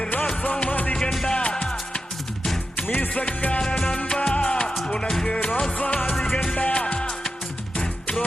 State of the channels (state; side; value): normal; both; correlation 0.90